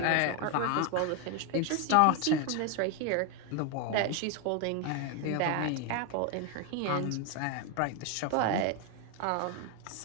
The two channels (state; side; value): different; both; correlation 0.01